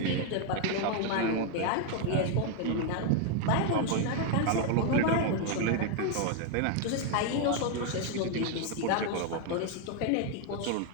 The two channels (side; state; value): both; different; correlation 0.00